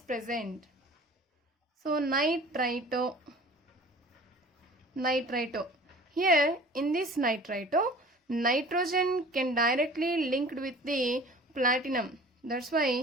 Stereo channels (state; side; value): normal; both; correlation 0.45